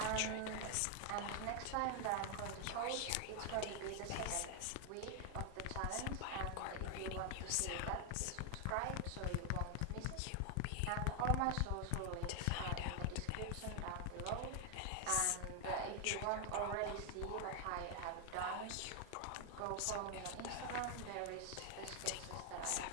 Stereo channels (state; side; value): different; both; correlation 0.00